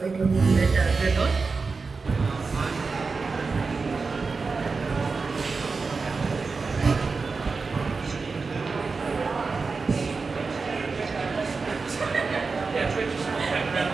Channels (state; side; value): quieter; left; 4.4 dB